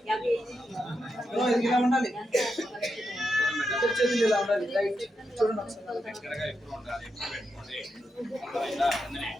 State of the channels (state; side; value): normal; both; correlation 0.85